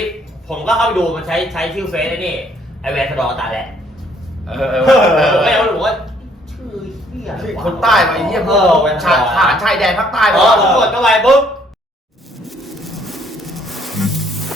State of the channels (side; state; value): both; normal; correlation 0.64